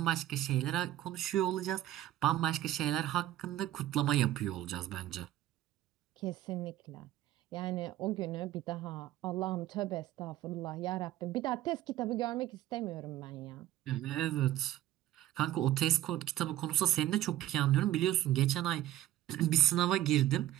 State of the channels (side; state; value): left; quieter; 13.7 dB